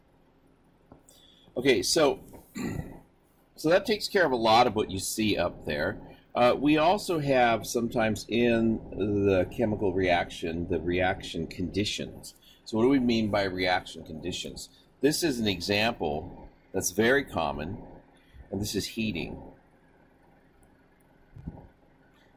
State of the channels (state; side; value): identical; both; correlation 1.00